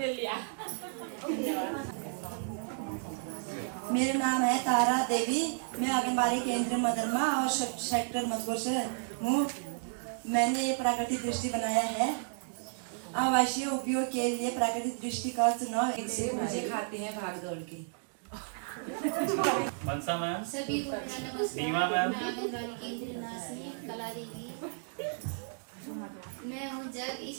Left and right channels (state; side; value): silent; left; digital silence